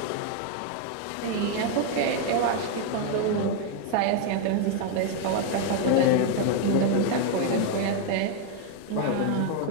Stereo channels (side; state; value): both; different; correlation 0.01